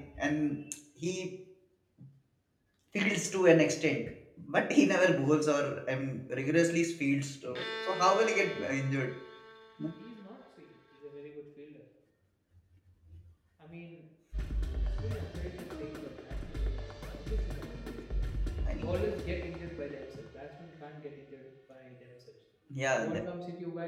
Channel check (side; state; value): both; identical; correlation 1.00